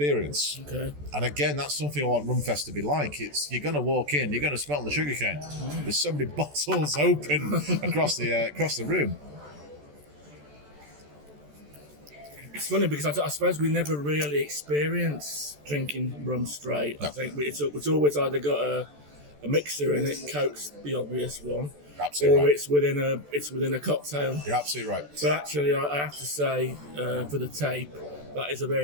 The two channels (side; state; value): left; late; 14 ms